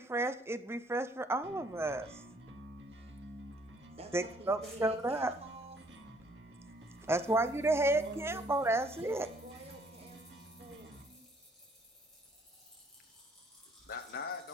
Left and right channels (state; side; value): normal; both; correlation 0.63